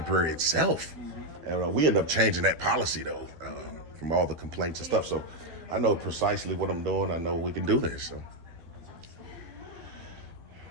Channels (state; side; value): late; left; 12 ms